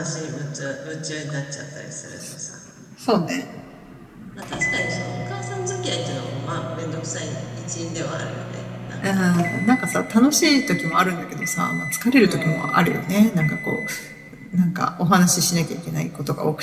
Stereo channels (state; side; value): identical; both; correlation 1.00